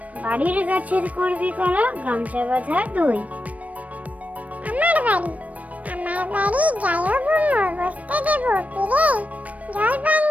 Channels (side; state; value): left; late; 0.068 ms